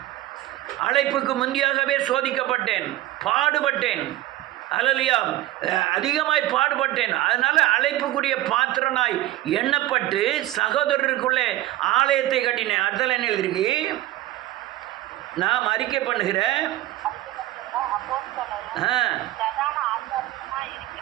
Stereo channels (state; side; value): quieter; left; 15.8 dB